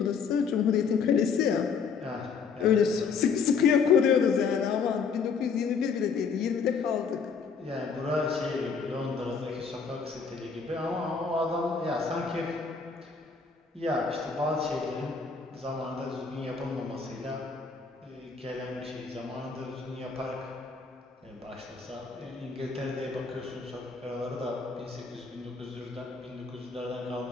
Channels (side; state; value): right; quieter; 5.5 dB